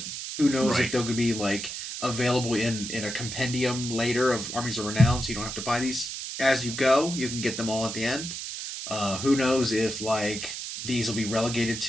Who knows if they'll be like available in a compendium later of Armies of Renown, so you don't have to buy these as you go. You can get them all at the end. Who knows if like these will be relegated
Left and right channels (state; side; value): noise; right; hiss, 7 dB below the sound